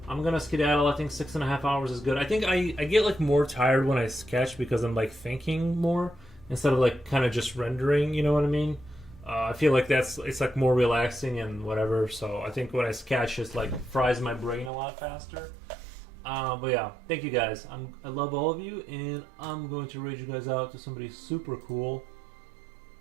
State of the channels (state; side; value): drops out; left; at 14.7 s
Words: I'm gonna skedaddle. I think 6.5 hours is good. I think I get like more tired when I sketch because I'm like thinking more instead of like kind of just rendering, you know what I mean? I feel like it's like more relaxing and whatever. So I think when I sketch, it's like fries my brain a lot faster. But yeah, thank you guys. I love all of you, and I'm going to raid you guys out to somebody super cool.